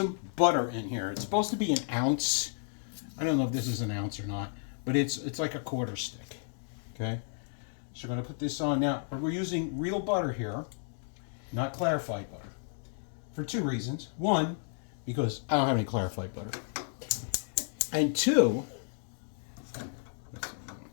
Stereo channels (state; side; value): silent; right; digital silence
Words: butter in here. It's supposed to be an ounce. I don't know if this is an ounce or not, but it's like a quarter stick. Okay? So we're going to put this on now. We're using real butter here, not clarified butter, for 2 reasons. 1, because I don't have any clarified butter. And 2,